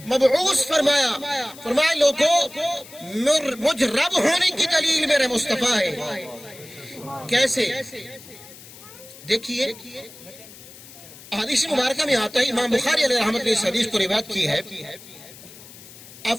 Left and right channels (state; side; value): noise; left; hiss, 19 dB below the sound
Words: مبعوث فرمایا لوگو مجھ رب ہونے کی دلیل میرے مصطفیٰ ہے۔ کیسے؟ دیکھیے حدیث مبارکہ میں آتا ہے، امام بخاری علیہ رحمت نے اس حدیث کو روایت کی ہے۔ آپ